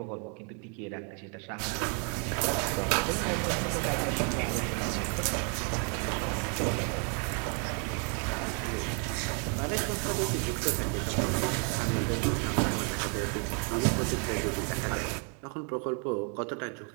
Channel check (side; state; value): left; quieter; 39.5 dB